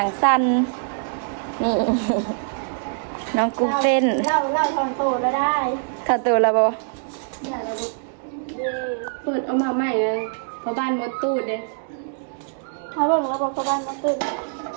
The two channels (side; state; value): left; silent; digital silence